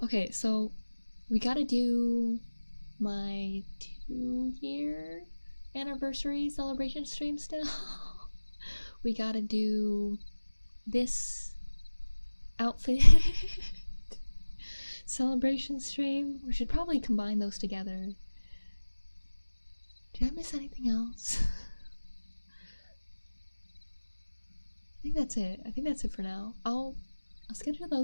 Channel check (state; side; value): inverted; both; correlation -1.00